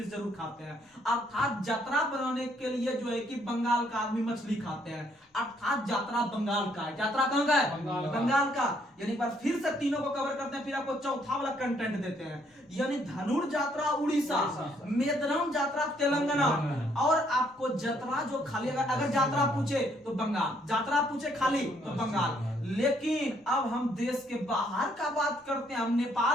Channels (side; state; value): both; normal; correlation 0.69